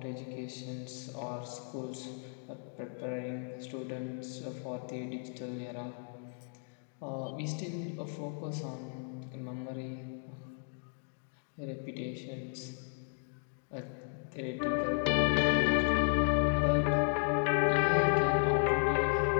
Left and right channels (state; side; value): silent; right; 55 dB below the other